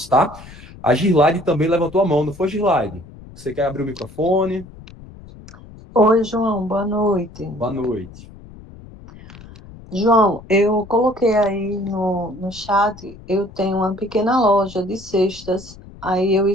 tá? A Girlaide também levantou a mão, não foi, Girlaide? Você quer abrir o microfone? Oi, João, boa noite. Boa noite. João, eu coloquei aí no chat, eu tenho uma pequena loja de cestas, aí eu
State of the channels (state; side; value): noise; left; rumble, 19 dB below the sound